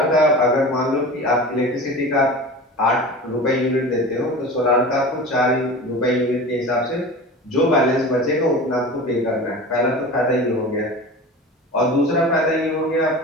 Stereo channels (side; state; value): both; normal; correlation 0.34